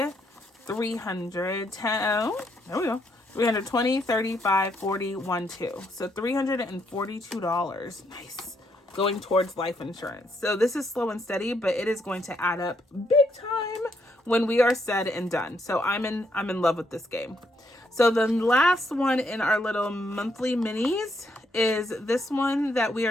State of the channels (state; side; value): normal; both; correlation 0.75